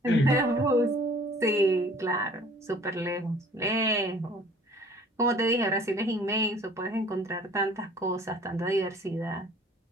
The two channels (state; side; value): normal; both; correlation 0.51